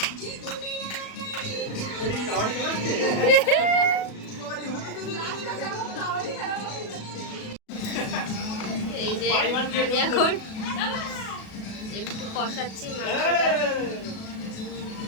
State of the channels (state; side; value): late; right; 37 ms